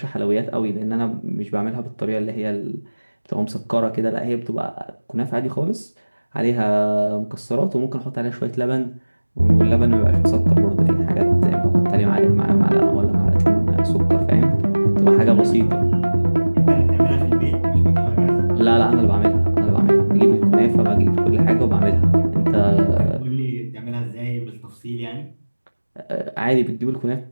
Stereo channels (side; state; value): both; inverted; correlation -1.00